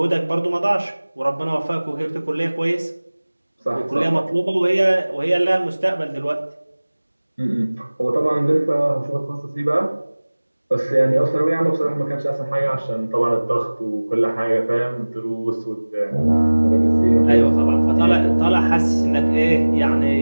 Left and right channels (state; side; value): inverted; both; correlation -1.00